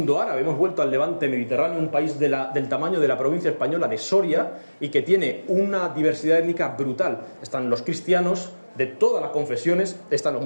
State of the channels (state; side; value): inverted; both; correlation -1.00